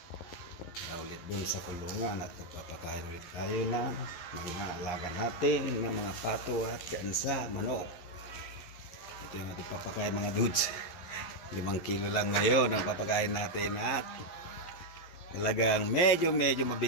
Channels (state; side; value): late; right; 11 ms